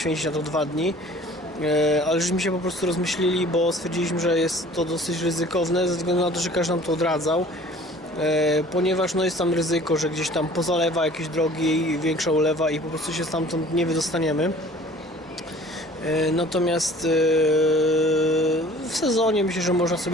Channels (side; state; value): both; normal; correlation 0.49